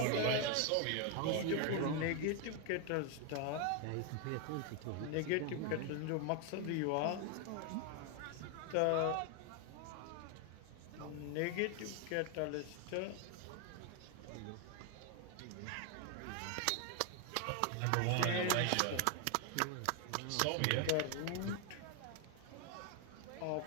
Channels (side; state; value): both; different; correlation 0.01